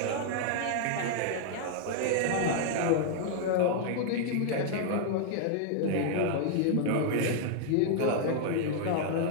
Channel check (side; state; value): both; different; correlation 0.00